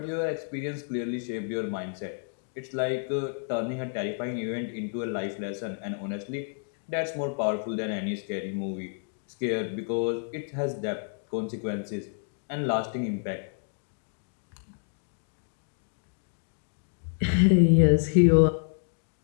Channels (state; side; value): silent; right; 58 dB below the other